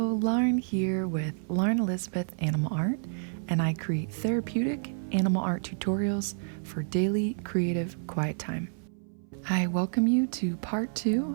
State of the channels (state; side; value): silent; left; 58 dB below the other